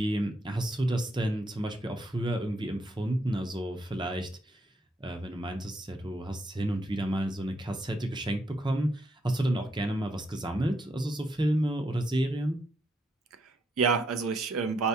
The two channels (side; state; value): both; normal; correlation 0.76